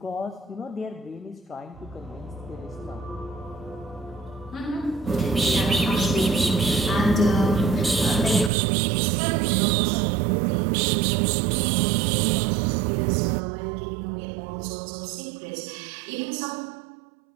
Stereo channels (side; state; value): left; drops out; at 8.5 s